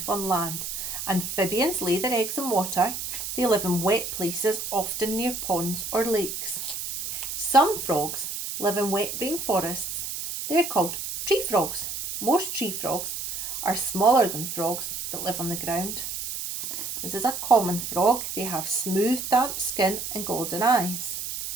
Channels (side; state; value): right; noise; hiss, 5 dB below the sound